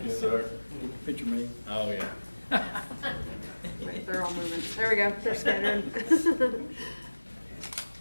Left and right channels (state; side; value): inverted; both; correlation -1.00